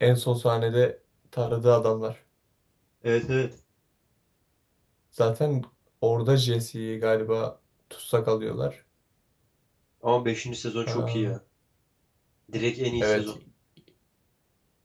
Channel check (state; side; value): identical; both; correlation 1.00